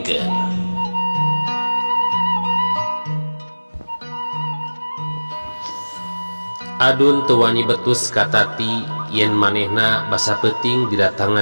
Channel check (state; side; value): inverted; both; correlation -1.00